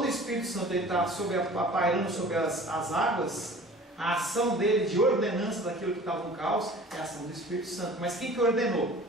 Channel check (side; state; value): both; normal; correlation 0.45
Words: o Espírito Santo está pairando sobre as águas, a ação dele de ordenança daquilo que estava no caos é a ação do Espírito Santo. Mas quem que ordenou?